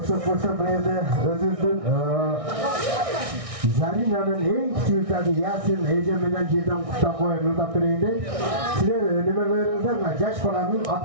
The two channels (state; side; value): late; left; 1.6 ms